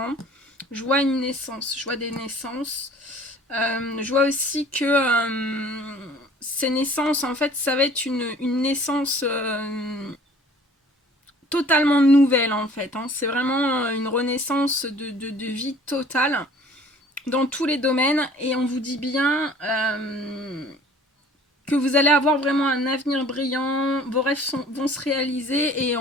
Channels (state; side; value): normal; both; correlation 0.51